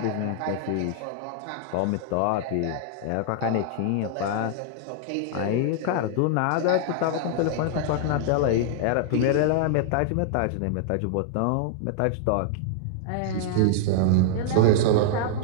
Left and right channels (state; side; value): different; both; correlation -0.01